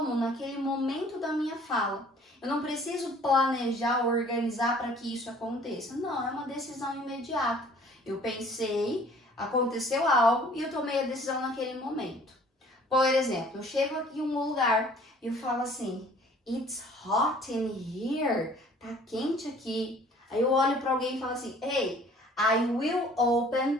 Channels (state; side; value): normal; both; correlation 0.53